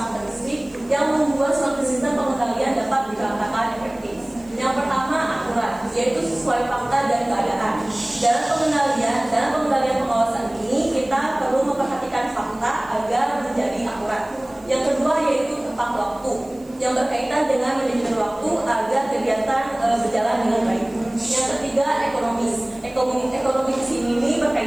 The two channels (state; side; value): noise; right; hiss, 27 dB below the sound